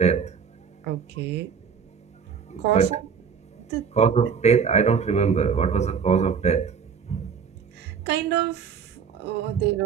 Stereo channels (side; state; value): left; quieter; 6.6 dB